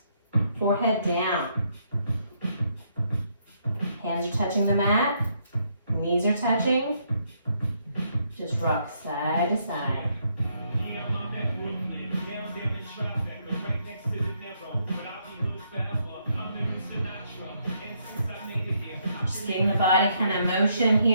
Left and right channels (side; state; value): both; inverted; correlation -0.73